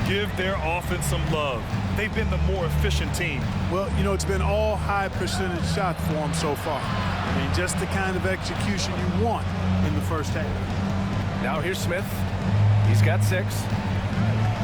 give their offense some love. They've been the more efficient team. Well, you know, it's been all high percentage shots for them so far. I mean, just the kind of execution you want in the first half. Now here's Smith. He's got 6.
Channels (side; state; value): both; identical; correlation 1.00